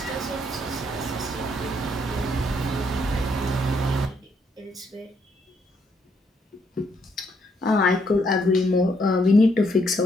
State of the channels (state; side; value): normal; both; correlation 0.72